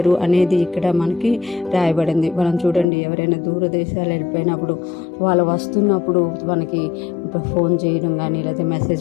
అనేది ఇక్కడ మనకి రాయబడింది. మనం చూడండి, ఎవరైనా దూర దేశాలు వెళ్ళిపోయినప్పుడు వాళ్ళు వస్తున్నప్పుడు మనకి ఫోన్ చేయడం కానీ లేదా మెసేజ్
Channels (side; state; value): right; drops out; at 2.9 s